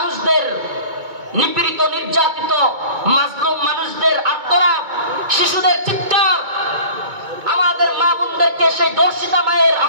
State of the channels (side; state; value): left; late; 2.2 ms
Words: নিপীড়িত নির্যাতিত মাজলুম মানুষদের আর্তনাদ, শিশুদের চিৎকার, আমার আমাদের মা বোনদেরকে সেই দর্শিতা মায়ের